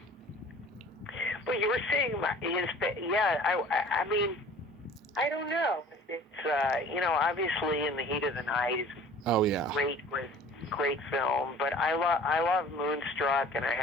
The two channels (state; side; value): normal; both; correlation 0.47